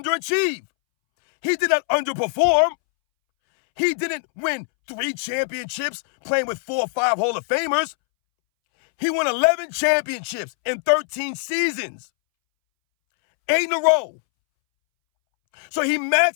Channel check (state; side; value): silent; right; 64 dB below the other